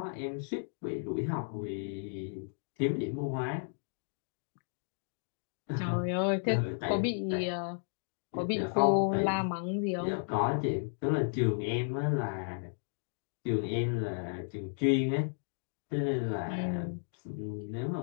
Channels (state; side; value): silent; right; digital silence